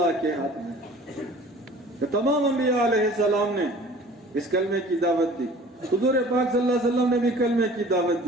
کے ہاتھ میں ہے. کہ تمام انبیاء علیہ السلام نے اس کلمے کی دعوت دی, حضور پاک صلی اللہ علیہ وسلم نے بھی کلمے کی دعوت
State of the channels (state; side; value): normal; both; correlation 0.47